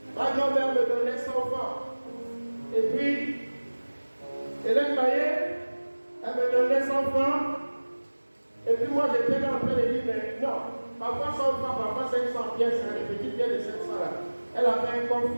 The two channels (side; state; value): both; inverted; correlation -1.00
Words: Ma grand-mère me donnait 100 francs. Et puis, Hélène Maillet, elle me donnait 100 francs. Et puis moi, j'étais là en train de dire, mais non, parfois 100 francs, parfois 500 pièces, les petites pièces de 500 là. Elle avait un coffre